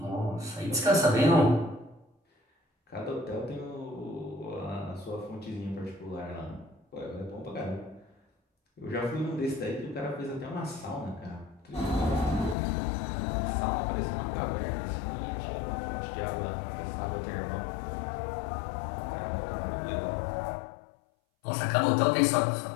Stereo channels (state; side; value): drops out; right; at 12.6 s